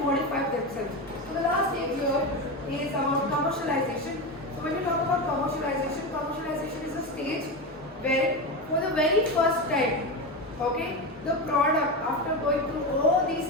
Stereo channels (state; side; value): normal; both; correlation 0.18